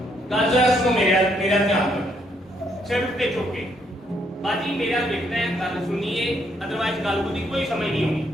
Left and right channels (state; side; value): normal; both; correlation 0.72